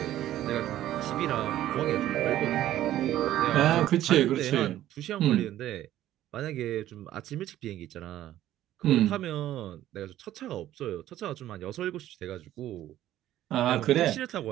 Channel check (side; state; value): left; quieter; 13.2 dB